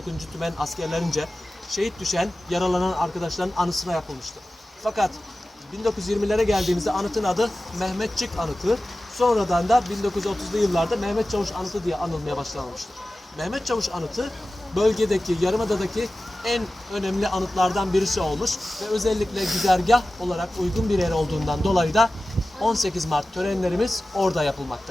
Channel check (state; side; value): normal; both; correlation 0.95